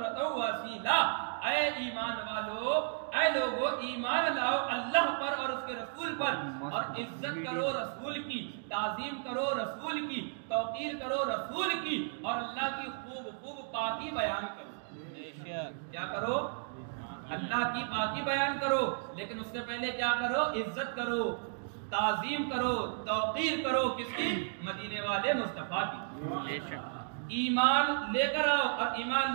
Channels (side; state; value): left; silent; digital silence